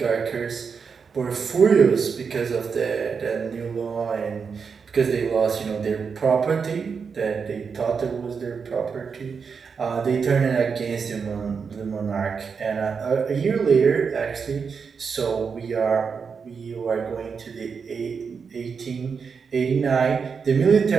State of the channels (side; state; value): left; quieter; 5.8 dB